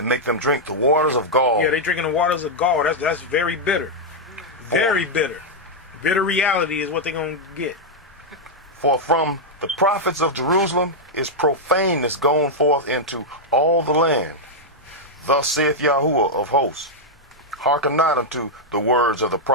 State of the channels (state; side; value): normal; both; correlation -0.03